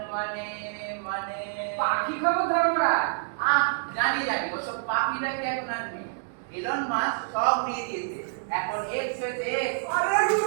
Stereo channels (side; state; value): left; silent; digital silence